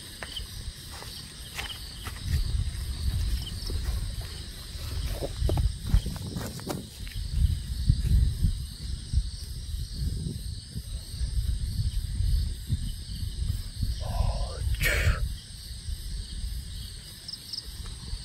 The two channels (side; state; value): both; identical; correlation 1.00